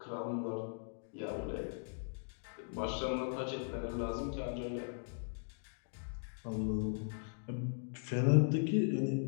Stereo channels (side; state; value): right; silent; digital silence